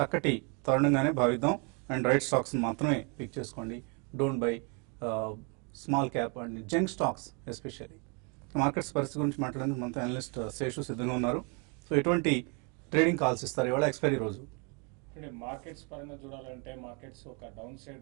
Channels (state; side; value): quieter; left; 34.1 dB